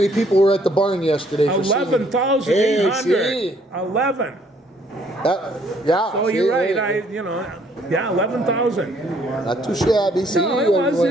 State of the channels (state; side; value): normal; both; correlation 0.64